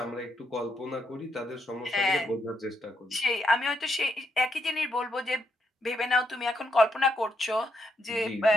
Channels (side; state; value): both; normal; correlation 0.78